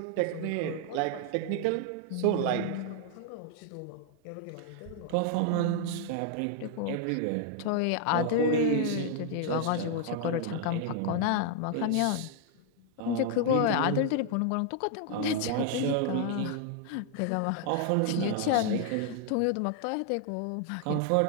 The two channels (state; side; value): different; both; correlation 0.00